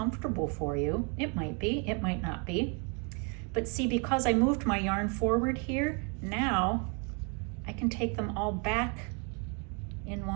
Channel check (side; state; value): left; quieter; 36.0 dB